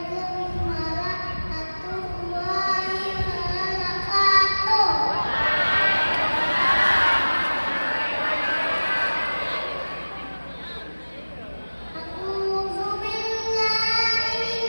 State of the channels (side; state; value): both; inverted; correlation -1.00